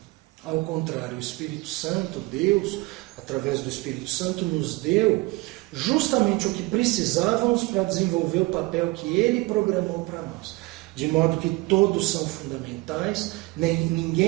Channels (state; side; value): quieter; left; 22.9 dB